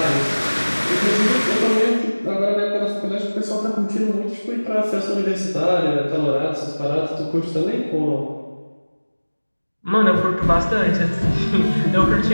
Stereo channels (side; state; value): both; inverted; correlation -1.00